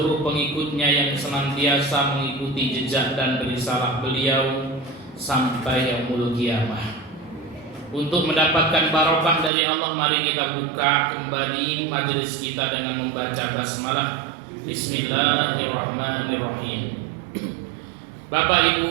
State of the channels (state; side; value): drops out; left; at 9.5 s